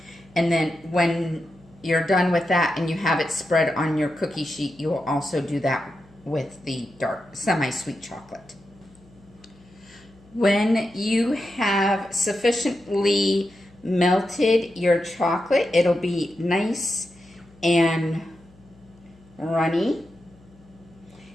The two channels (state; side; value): noise; left; hum, 27 dB below the sound